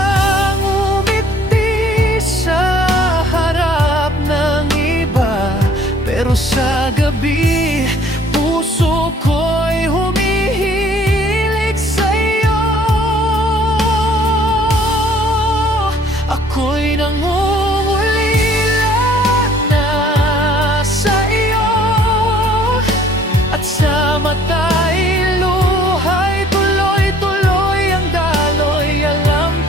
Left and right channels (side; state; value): both; normal; correlation 0.57